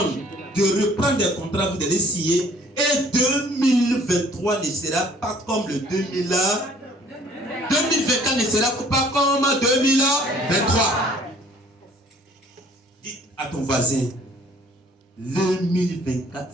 de reprendre des contrats, vous allez signer. Et 2023 ne sera pas comme le 2000. 2024 ne sera pas comme 2023. Dis à ton voisin, 2024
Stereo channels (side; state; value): both; normal; correlation 0.56